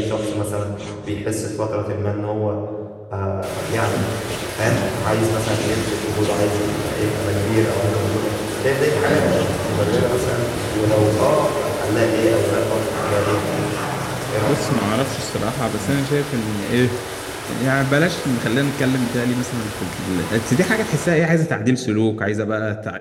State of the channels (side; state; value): both; identical; correlation 1.00